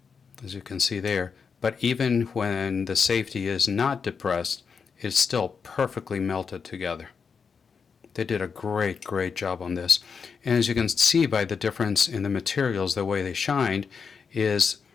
as you can see there. But even when the safety is not depressed, it's still perfectly melted together. They did a great job on this. And as you can see by the difference in the materials, the way they shined, is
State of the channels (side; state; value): right; quieter; 5.9 dB